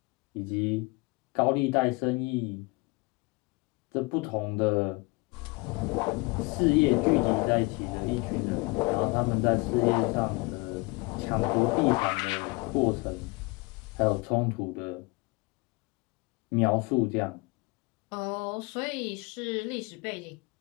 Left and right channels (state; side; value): quieter; right; 26.1 dB